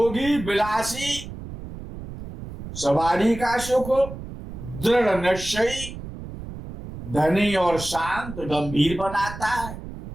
विलासी, सवारी का सुख, दृढ़ निश्चयी, धनी और शांत, गंभीर बनाता है।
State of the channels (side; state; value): right; noise; rumble, 11 dB below the sound